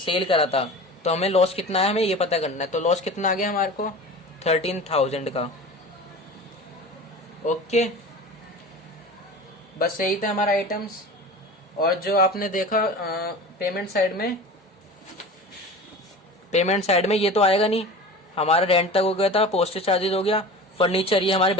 करा था, तो हमें लॉस कितना है हमें ये पता करना है। तो लॉस कितना आ गया हमारे को 13,000 का, ओके। बस यही था हमारा आइटम्स। और जो आपने देखा पेमेंट साइड में ये तो आएगा नहीं, हमारा रेंट तक हो गया था, पोस्टेज चार्जेस हो गया, फर्नीचर ये हमारे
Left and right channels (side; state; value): both; normal; correlation 0.35